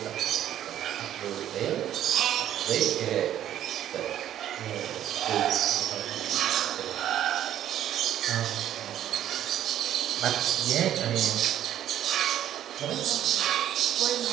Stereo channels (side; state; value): left; quieter; 11.4 dB